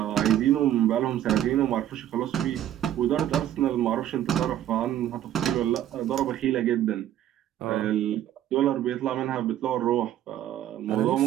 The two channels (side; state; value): left; quieter; 11.8 dB